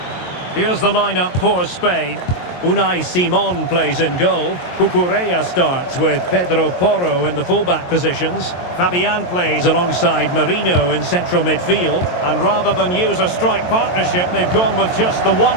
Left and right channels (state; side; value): late; right; 22 ms